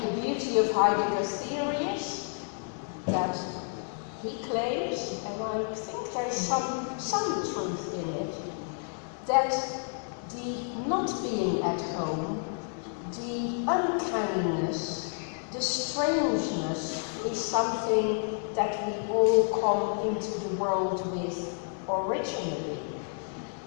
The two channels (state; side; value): silent; right; 58 dB below the other